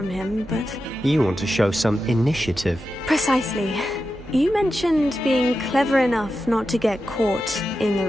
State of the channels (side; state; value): right; noise; hum, 20 dB below the sound